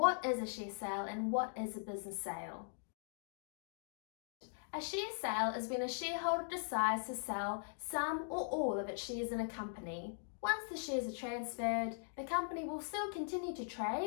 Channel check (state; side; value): silent; right; digital silence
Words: is a share sale and what is a business sale. A share sale is when a shareholder decides to sell some or all of its shares in a company. Once the shares are transferred, the company will still continue to